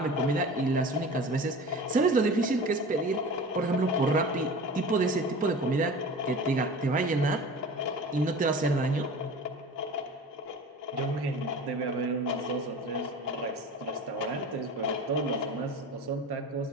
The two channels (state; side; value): normal; both; correlation 0.37